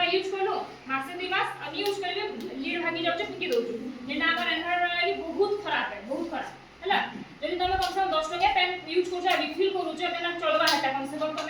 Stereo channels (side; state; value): both; identical; correlation 1.00